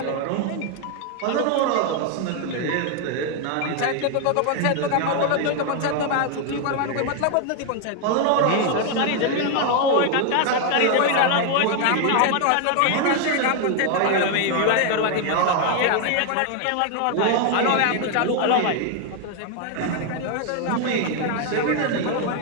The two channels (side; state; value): both; different; correlation 0.00